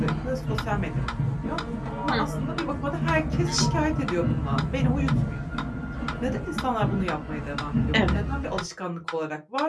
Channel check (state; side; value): identical; both; correlation 1.00